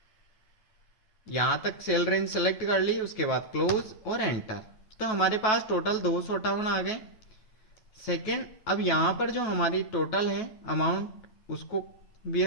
यहां तक सेल रेंज सेलेक्ट कर ली, उसके बाद क्लोज और एंटर। तो हमारे पास टोटल 258 आ गए। सेकंड, अब यहां पर जो हमारी टोटल है अमाउंट उसको भी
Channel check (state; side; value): late; right; 9.3 ms